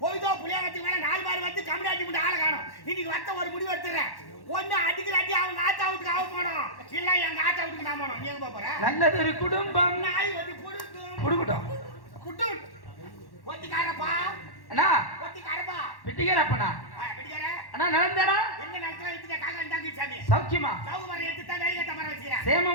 போய்தோ புளியாங்கத்துக்கு மேல 4 பார் வந்து கம்யூனிட்டி மட்டும் ஆளை காணும். இன்னைக்கு வத்த ஒரு முடிவு எடுத்துறேன். ஒண்ணு அடிக்கிறாட்டி அவங்க ஆத்தா வீட்டுக்கு அவ போனோம், இல்ல எங்க ஆத்தா வீட்டுக்கு நான் போனோம். நீ எங்க போற? நல்லது ஒரு குடும்பம் நாய் வந்து குடுக்கும் குடுக்கட்டும் குட்டு ஒத்திக்காரப்பா அண்ணா ஒத்திக்காரப்பா பிட்டிக்காரப்பண்ணா பிடிக்கார அண்ணா நடந்தானா எங்க நடத்துல எடுத்துட்ட காக்கா இருந்தாங்க சாமி சௌக்கியமா சௌகமரம் எடுத்து தான் வேலையை தமர வச்சுக்கிறேன்.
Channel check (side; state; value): right; late; 1.1 ms